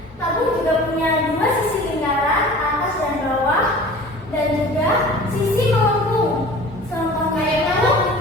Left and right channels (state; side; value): normal; both; correlation 0.42